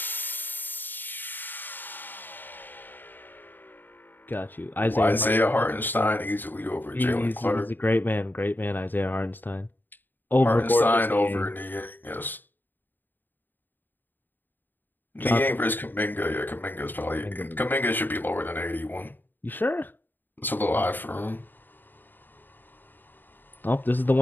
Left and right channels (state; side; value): late; right; 0.091 ms